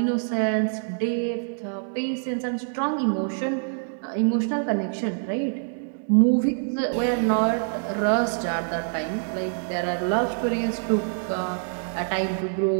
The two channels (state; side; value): silent; left; digital silence